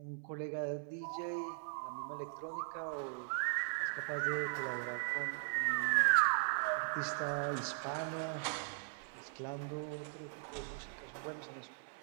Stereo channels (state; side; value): silent; left; 52 dB below the other